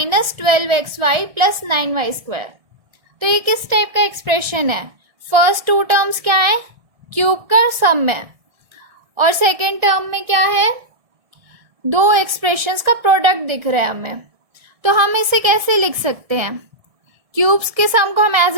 12xy plus 9y square. तो ये किस टाइप का एक्सप्रेशन है, फर्स्ट टू टर्म्स क्या है, क्यूब का सम है, और सेकेंड टर्म में क्या है, दो एक्सप्रेशंस का प्रोडक्ट दिख रहा है हमें। तो हम इसे कैसे लिख सकते हैं, क्यूब्स के सम को हम एज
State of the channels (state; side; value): late; left; 1.6 ms